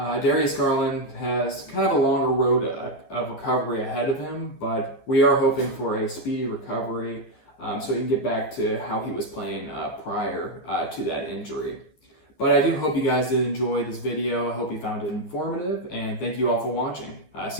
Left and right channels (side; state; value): right; late; 11 ms